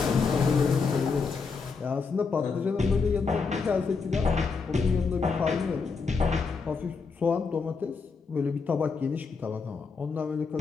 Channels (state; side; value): quieter; right; 4.9 dB